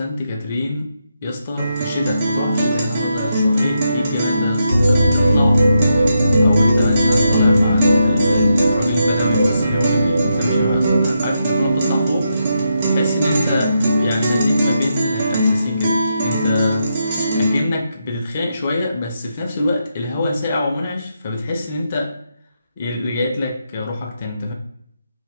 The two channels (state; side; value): inverted; both; correlation -0.83